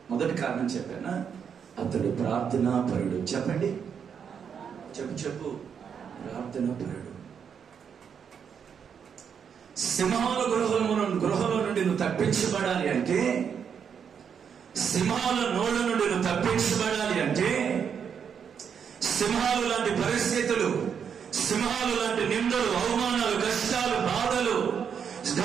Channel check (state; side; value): quieter; left; 7.3 dB